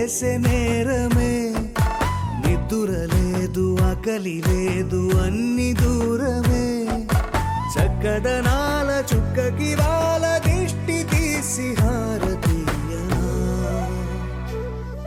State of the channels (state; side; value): identical; both; correlation 1.00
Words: నేరమే నిద్దుర లేదు ఆకలి లేదు అన్ని దూరమే కదనాల చుక్కకి వాళ్ళ దిష్టి తీసి హారతీయనా